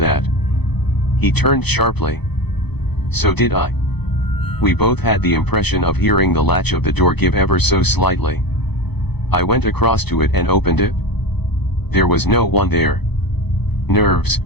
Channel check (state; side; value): late; right; 0.98 ms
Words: He turned sharply. So did I. We both had the impression of hearing the latch of the door give ever so slightly. I went across to it and opened it. There was no one there. Nerves,